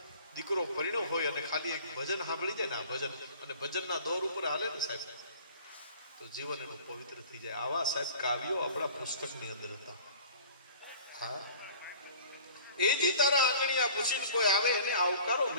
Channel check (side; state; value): both; inverted; correlation -0.46